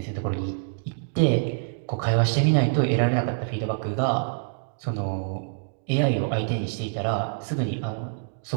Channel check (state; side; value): silent; left; digital silence